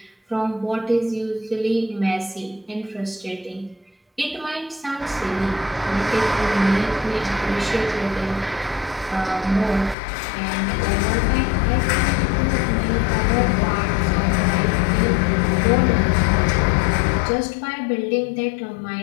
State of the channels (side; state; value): right; drops out; at 10.0 s